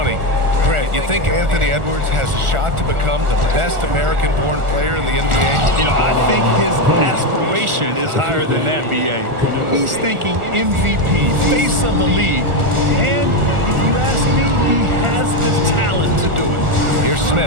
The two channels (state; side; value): late; left; 1.4 ms